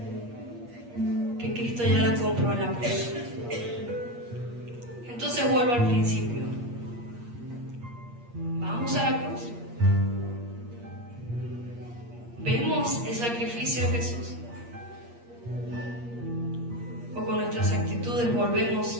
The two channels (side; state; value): left; late; 8.5 ms